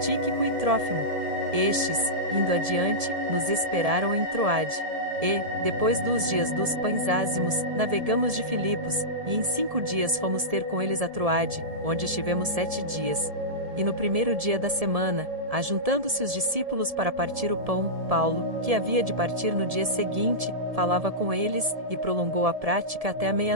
e Trófimo. Estes, indo adiante, nos esperaram em Troade. E, depois dos dias dos pães ázimos, navegamos de Filipos, e em 5 dias fomos ter com eles a Troade, onde estivemos 7 dias. E no primeiro dia da semana, ajuntando-se os discípulos para partir o pão, Paulo, que havia de partir no dia seguinte, falava com eles, e prolongou a prática até a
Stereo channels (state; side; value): late; left; 1.7 ms